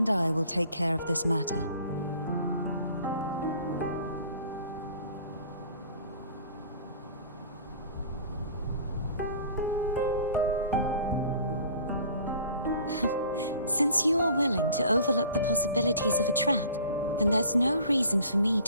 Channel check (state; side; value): inverted; both; correlation -0.48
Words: I will take care of this matter. Since you are willing to overlook the possibilities of a trap, then there's no reason for me